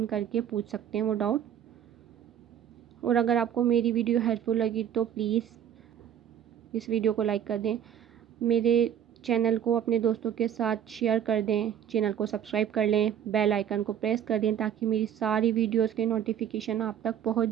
करके पूछ सकते हैं वो डाउट। और अगर आपको मेरी वीडियो हेल्पफुल लगी तो प्लीज़ इस वीडियो को लाइक कर दें, मेरे चैनल को अपने दोस्तों के साथ शेयर कर दें, चैनल को सब्सक्राइब कर लें, बेल आइकन को प्रेस कर दें ताकि मेरी सारी वीडियोस के नोटिफिकेशन आप तक पहुंच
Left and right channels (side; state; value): left; quieter; 9.5 dB